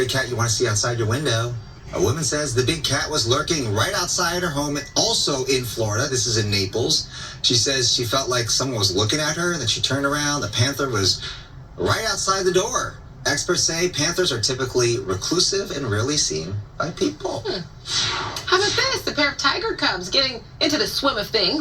cat you want to see outside your window. A woman says the big cat was lurking right outside her home, also in Florida. This is in Naples. She says she felt like someone was looking at her, and then she turned around. The panther was right outside the door. Experts say panthers are typically reclusive and rarely seen by people. How about this? A pair of tiger cubs getting into the swim of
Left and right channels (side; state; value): both; identical; correlation 1.00